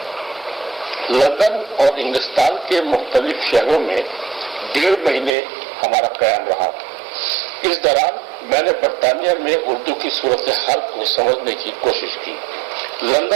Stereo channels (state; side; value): drops out; left; at 5.4 s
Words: لندن اور انگلستان کے مختلف شہروں میں 1.5 مہینے ہمارا قیام رہا. اس دوران میں نے برطانیہ میں اردو کی صورتحال کو سمجھنے کی کوشش کی.